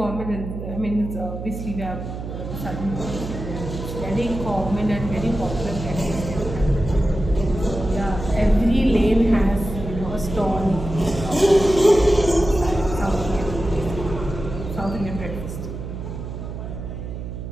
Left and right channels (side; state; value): right; noise; hum, 7 dB below the sound